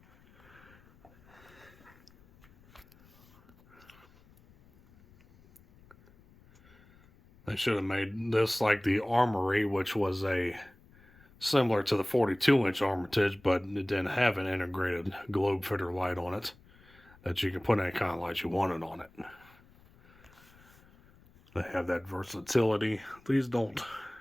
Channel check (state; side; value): noise; left; rumble, 27 dB below the sound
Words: They should have made this like the Armory, which was a similar to the 42-inch Armitage, but it didn't have an integrated globe fitter light on it that you can put any kind of light you wanted on it. They have that versatility. These don't.